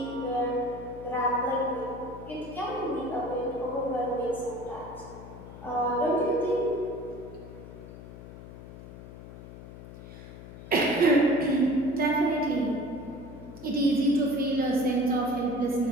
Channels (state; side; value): noise; left; hum, 15 dB below the sound